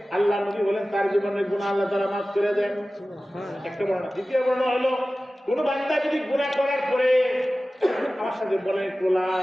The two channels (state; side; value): normal; both; correlation 0.96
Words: আল্লাহ নবী বলেন তার জীবনের গুনাহ আল্লাহ তাআলা মাফ করে দেন। একটা বর্ণনা। দ্বিতীয় বর্ণনা হলো কোন বান্দা যদি গুনাহ করার পরে, আমার সাথে বলেন লা